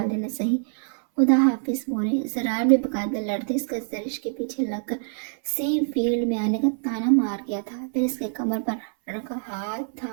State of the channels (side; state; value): left; silent; 59 dB below the other